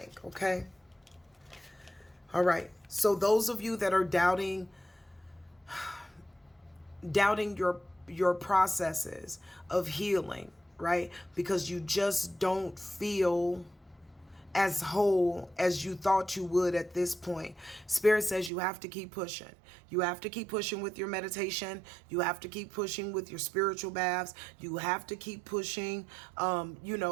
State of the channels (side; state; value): left; drops out; at 18.5 s